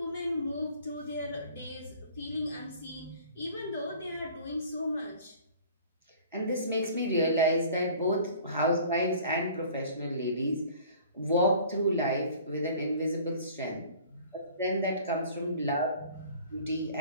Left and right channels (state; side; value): inverted; both; correlation -0.48